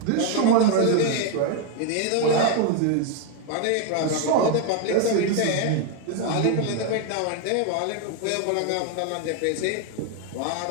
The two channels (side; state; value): both; different; correlation 0.01